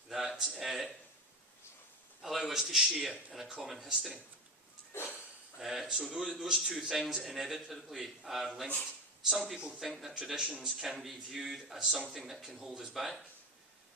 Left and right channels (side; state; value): both; normal; correlation 0.19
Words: that allow us to share in a common history. So those two things inevitably are linked. Some people think that traditions can be viewed as something that can hold us back,